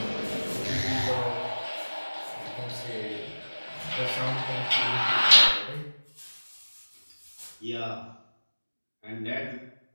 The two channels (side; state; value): both; inverted; correlation -1.00